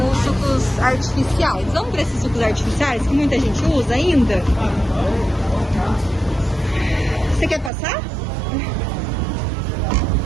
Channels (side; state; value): left; drops out; at 7.7 s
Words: os sucos artificiais. Vamos para esses sucos artificiais que muita gente usa ainda? Você quer passar?